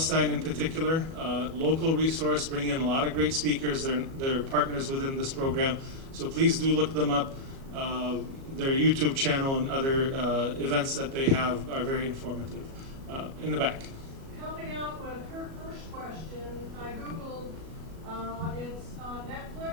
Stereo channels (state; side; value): late; left; 37 ms